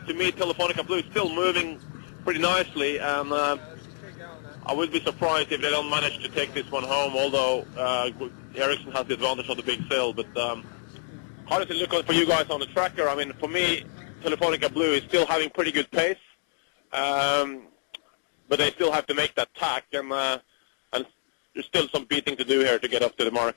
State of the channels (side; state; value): right; silent; digital silence